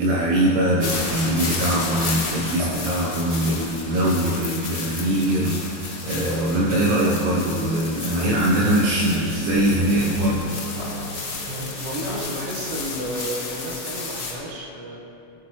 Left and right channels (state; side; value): late; left; 24 ms